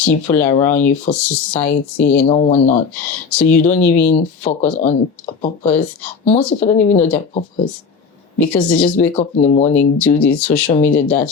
around you, for society and all whatnot. So you don't even focus on a purpose. Most people don't even know their purpose. Because they just wake up in the morning, do this, social media that,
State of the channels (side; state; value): right; quieter; 5.4 dB